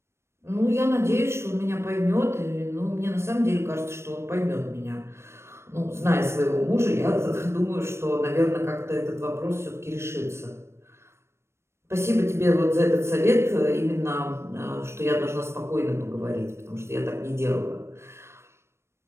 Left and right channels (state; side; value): late; left; 0.13 ms